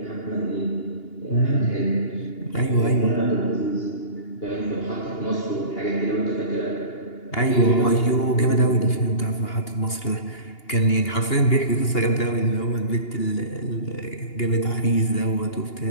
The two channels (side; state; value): right; late; 2.8 ms